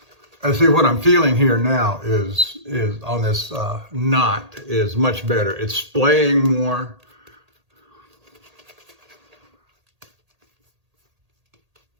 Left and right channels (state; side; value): late; left; 1.8 ms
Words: I see what I'm feeling here now is on this knot is much better. It's splaying more.